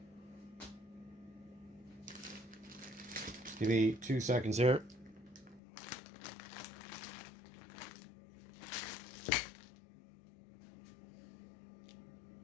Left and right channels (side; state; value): right; drops out; at 5.6 s